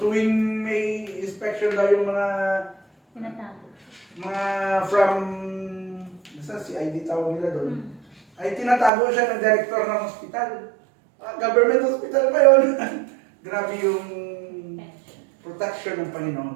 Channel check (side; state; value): left; drops out; at 8.9 s